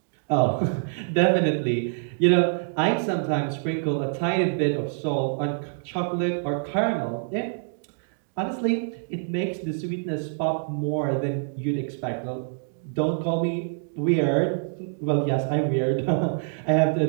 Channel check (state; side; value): silent; left; digital silence